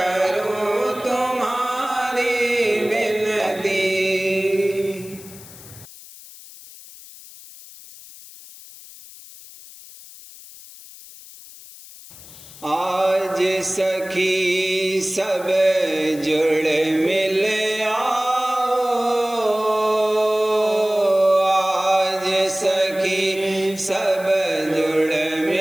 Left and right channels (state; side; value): noise; left; hiss, 18 dB below the sound